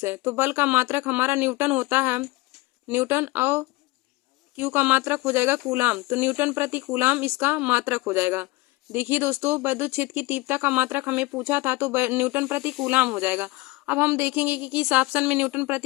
है, तो बल का मात्रक हमारा न्यूटन होता है, न्यूटन, और क्यू का मात्रक हो जाएगा कूलाम। तो न्यूटन प्रति कूलाम इसका मात्रक हो जाएगा। देखिए दोस्तों वैद्युत क्षेत्र की तीव्रता का मात्रक हमें पूछा था तो न्यूटन प्रति कूलाम हो जाएगा। अब हम देखेंगे कि किस ऑप्शन में न्यूटन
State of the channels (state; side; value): quieter; right; 21.9 dB